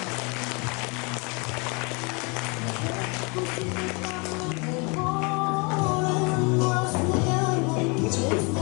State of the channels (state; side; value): quieter; right; 31.1 dB